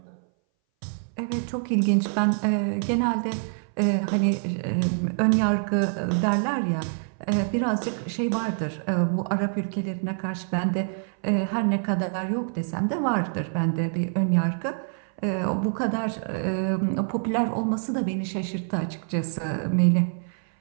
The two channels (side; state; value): left; silent; 59 dB below the other